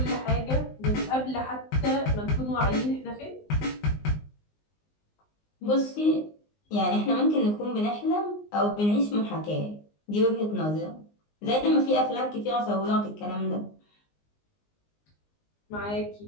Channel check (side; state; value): right; late; 19 ms